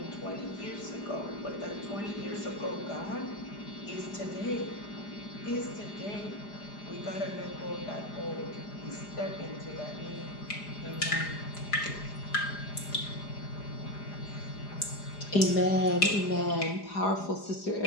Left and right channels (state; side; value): late; right; 4.9 ms